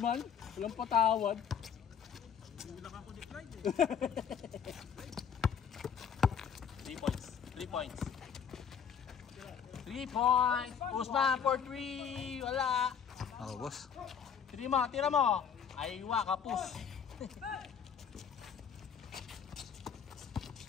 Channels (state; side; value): quieter; right; 7.5 dB